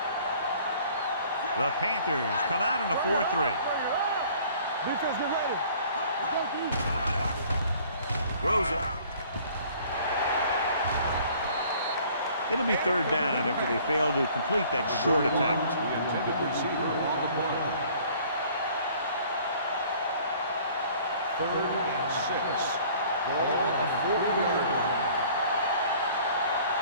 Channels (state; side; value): inverted; both; correlation -0.53